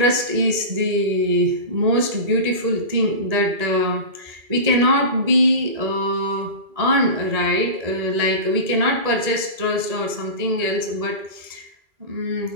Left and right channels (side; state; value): left; late; 1.9 ms